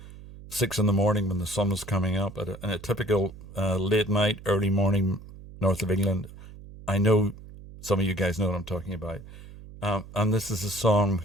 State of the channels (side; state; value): right; noise; hum, 17 dB below the sound